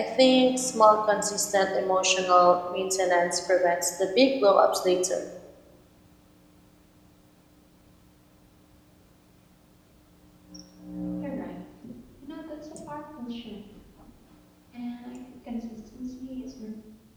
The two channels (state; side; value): identical; both; correlation 1.00